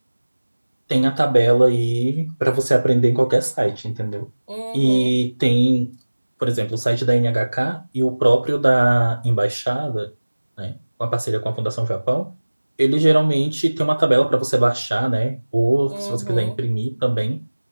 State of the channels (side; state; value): both; inverted; correlation -1.00